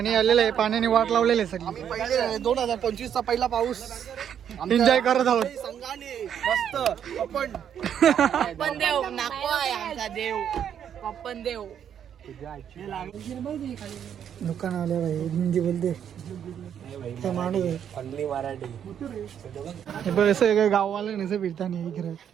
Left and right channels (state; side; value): quieter; left; 8.9 dB